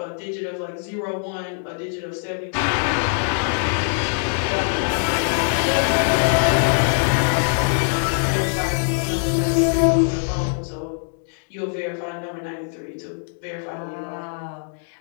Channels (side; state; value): right; silent; digital silence